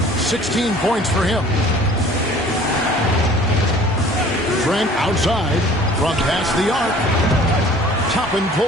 16 points for him. Trent outside from past the arc. Toppin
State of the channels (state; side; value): normal; both; correlation 0.50